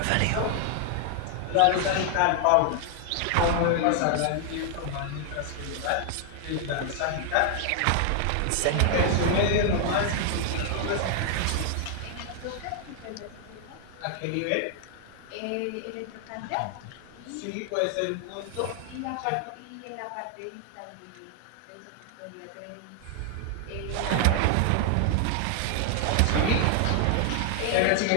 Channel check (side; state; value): both; different; correlation 0.00